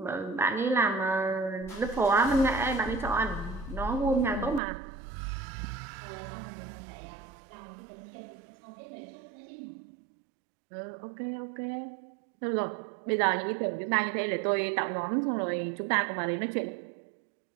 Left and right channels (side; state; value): left; drops out; at 4.6 s